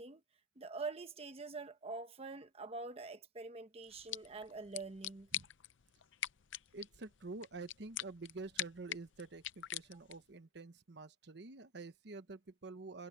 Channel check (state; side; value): normal; both; correlation 0.09